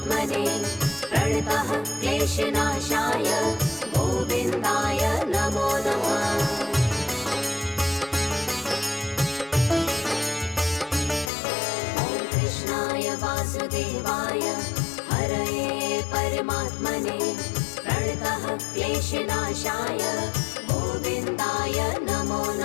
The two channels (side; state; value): right; drops out; at 11.3 s